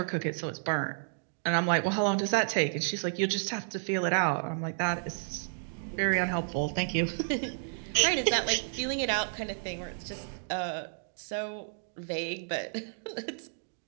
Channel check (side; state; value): left; silent; digital silence